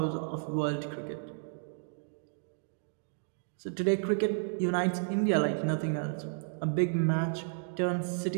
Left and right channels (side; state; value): left; silent; digital silence